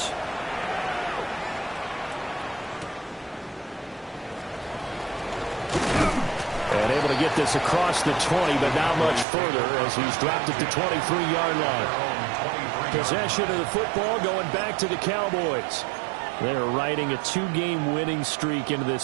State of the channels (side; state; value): left; drops out; at 9.2 s